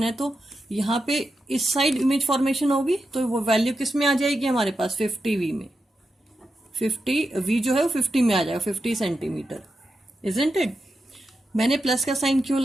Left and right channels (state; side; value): normal; both; correlation 0.88